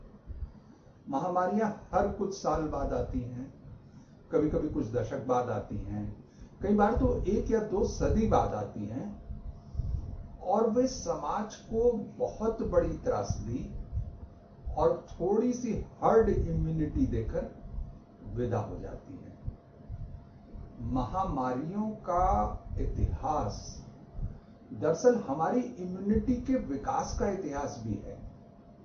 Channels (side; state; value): both; identical; correlation 1.00